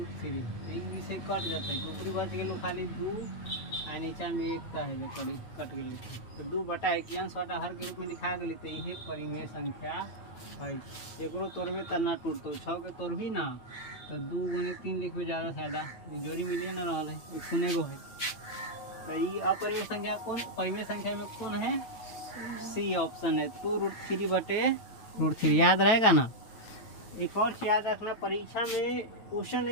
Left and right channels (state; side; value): late; right; 9.1 ms